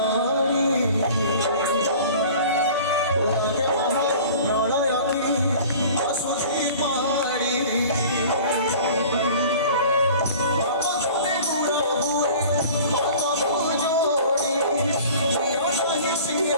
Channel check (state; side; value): inverted; both; correlation -0.44